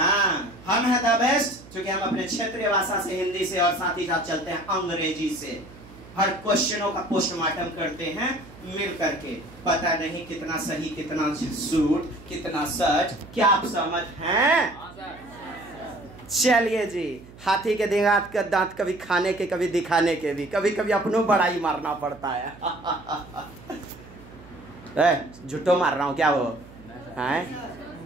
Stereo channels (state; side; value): noise; right; hum, 20 dB below the sound